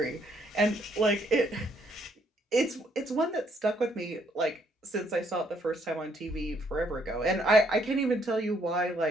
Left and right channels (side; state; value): both; normal; correlation 0.69